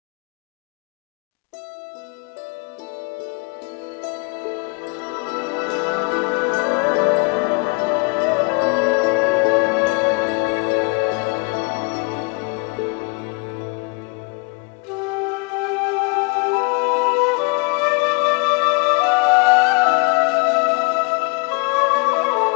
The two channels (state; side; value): quieter; right; 31.7 dB